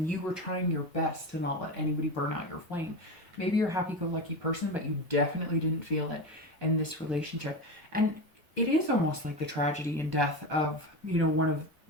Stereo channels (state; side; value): normal; both; correlation 0.21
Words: you were trying your best to not let anybody burn out your flame. Maybe you're a happy-go-lucky person, but you definitely didn't feel it in this relationship. And it is almost like the tragedy and death of, you know, one of